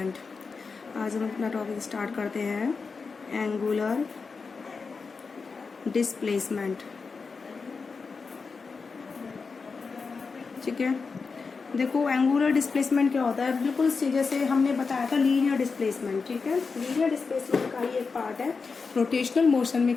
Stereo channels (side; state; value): right; quieter; 4.8 dB